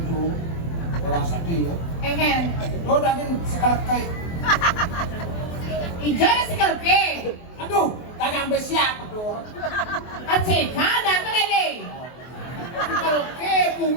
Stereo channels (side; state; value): right; late; 24 ms